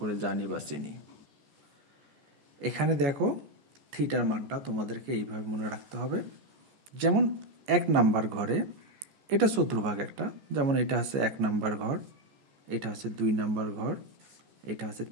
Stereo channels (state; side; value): late; left; 14 ms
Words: জানি বা চিনি। এখানে দেখো থিটার মানটা তোমাদেরকে এইভাবে মনে রাখতে হবে। যেমন 1 নাম্বার ঘরে এটা চতুর্ভাগ একটা, যেমন এটা হচ্ছে 1 নাম্বার ঘর, এটা হচ্ছে 2 নাম্বার ঘর, এটা হচ্ছে